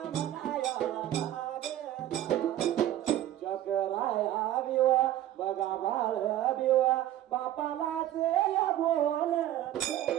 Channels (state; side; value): quieter; left; 12.9 dB